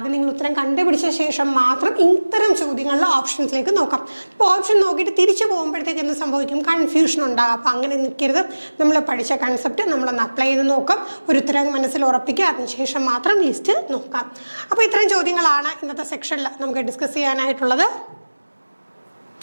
നിങ്ങൾ ഉത്തരം കണ്ടുപിടിച്ച ശേഷം മാത്രം ഇത്തരം ചോദ്യങ്ങളിലെ ഓപ്ഷൻസിലേക്ക് നോക്കാം. ഇപ്പോൾ ഓപ്ഷൻ നോക്കിയിട്ട് തിരിച്ചു പോകുമ്പോഴത്തേക്ക് എന്ത് സംഭവിക്കും, കൺഫ്യൂഷൻ ഉണ്ടാകും. അപ്പോൾ അങ്ങനെ നിൽക്കരുത്. നമ്മൾ പഠിച്ച കൺസെപ്റ്റ് നമ്മളൊന്ന് അപ്ലൈ ചെയ്ത് നോക്കാം, ഒരു ഉത്തരം മനസ്സിൽ ഉറപ്പിക്കുക, അതിനുശേഷം മാത്രം ലിസ്റ്റ് നോക്കാം. അപ്പോൾ ഇത്രയും ചോദ്യങ്ങളാണ് ഇന്നത്തെ സെക്ഷനിൽ നമുക്ക് ഡിസ്കസ് ചെയ്യാനായിട്ടുള്ളത്.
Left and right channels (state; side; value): inverted; both; correlation -1.00